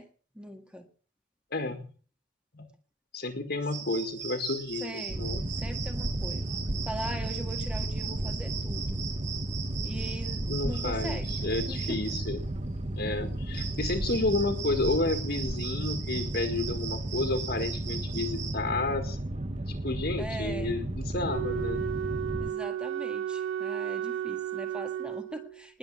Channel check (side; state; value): both; normal; correlation 0.42